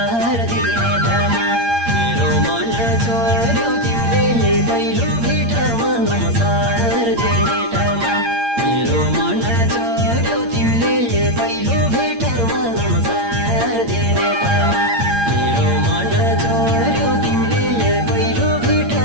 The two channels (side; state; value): left; late; 8.7 ms